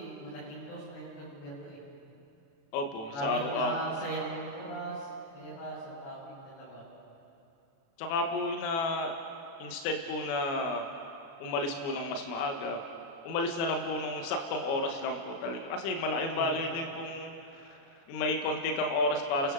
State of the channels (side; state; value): right; late; 36 ms